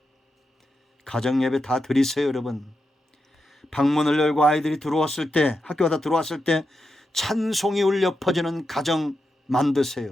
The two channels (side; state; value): both; normal; correlation 0.87